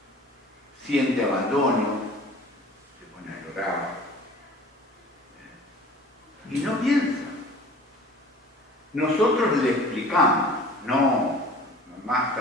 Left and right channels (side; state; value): both; normal; correlation 0.45